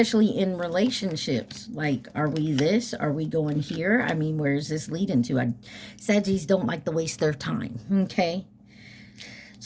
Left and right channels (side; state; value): both; identical; correlation 1.00